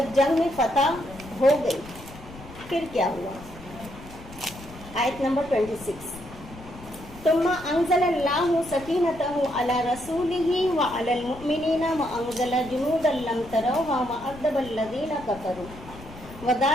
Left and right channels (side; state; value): left; noise; rumble, 17 dB below the sound